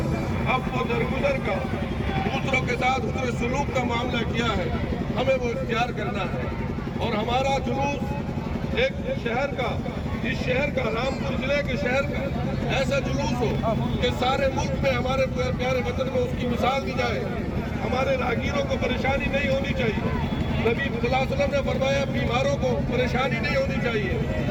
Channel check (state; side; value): identical; both; correlation 1.00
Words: اب و درگزر کا، دوسروں کے ساتھ حسن سلوک کا معاملہ کیا ہے، ہمیں وہ اختیار کرنا ہے۔ اور ہمارا جلوس ایک شہر کا، اس شہر کا، رامپور ضلع کے شہر کا ایسا جلوس ہو کہ سارے ملک میں ہمارے پیارے وطن میں اس کی مثال دی جائے۔ ہمارے راہگیروں کو پریشانی نہیں ہونی چاہیے، نبی صلی اللہ علیہ وسلم نے فرمایا بیماروں کو پریشانی نہیں ہونی چاہیے،